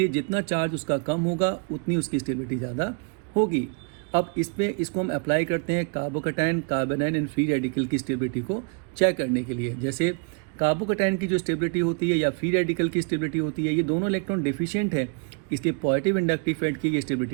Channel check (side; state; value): left; quieter; 35.2 dB